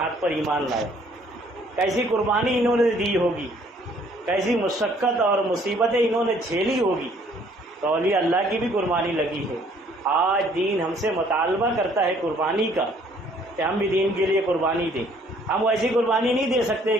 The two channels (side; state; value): both; normal; correlation 0.61